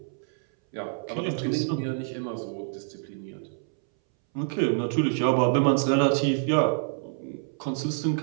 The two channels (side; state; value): left; silent; 60 dB below the other